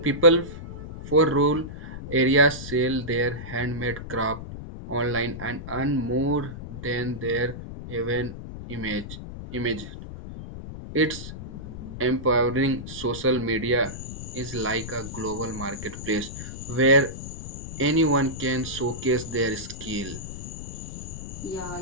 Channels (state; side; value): noise; left; rumble, 10 dB below the sound